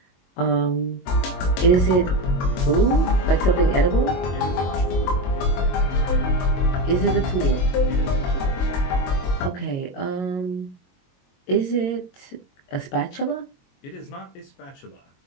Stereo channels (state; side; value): late; right; 22 ms